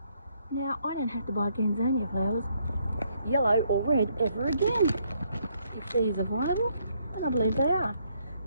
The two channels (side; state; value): both; inverted; correlation -0.71